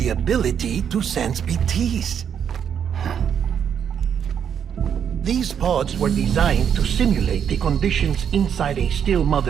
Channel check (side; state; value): left; quieter; 8.2 dB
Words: ability to sense BTs. These pods were designed to simulate the conditions inside a still